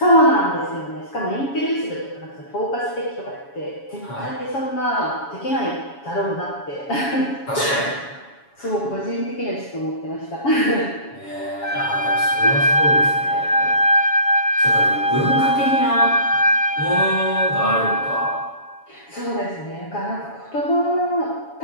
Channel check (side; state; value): right; late; 7.2 ms